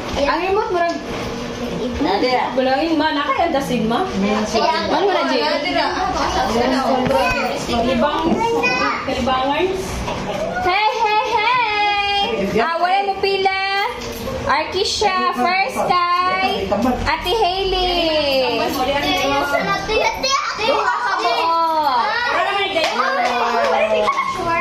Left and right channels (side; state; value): both; identical; correlation 1.00